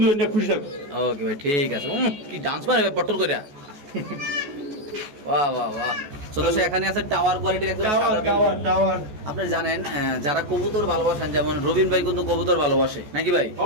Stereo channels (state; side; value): late; left; 14 ms